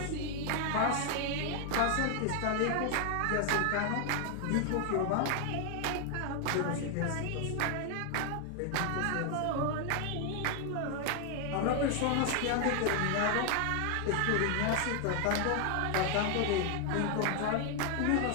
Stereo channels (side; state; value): both; different; correlation 0.00